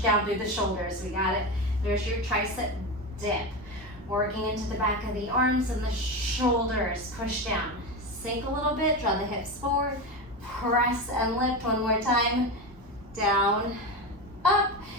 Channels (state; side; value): normal; both; correlation 0.19